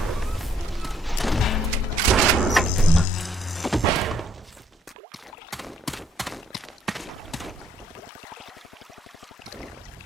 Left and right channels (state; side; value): normal; both; correlation 0.68